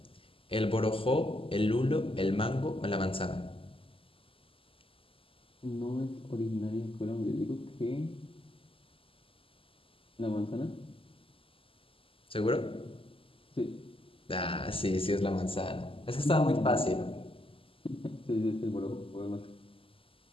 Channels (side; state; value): right; late; 0.26 ms